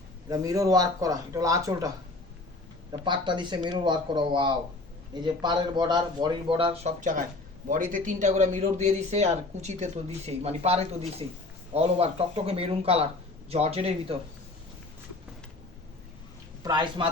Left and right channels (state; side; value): quieter; right; 3.0 dB